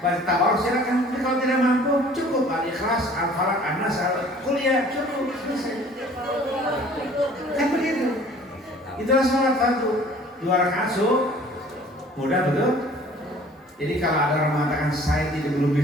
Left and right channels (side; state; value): both; normal; correlation 0.51